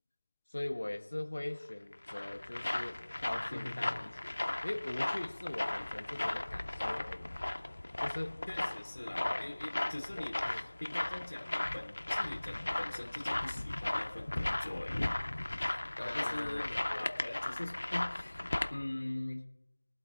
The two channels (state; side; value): inverted; both; correlation -1.00